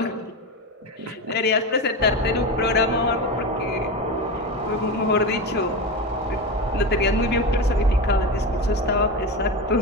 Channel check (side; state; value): both; normal; correlation 0.20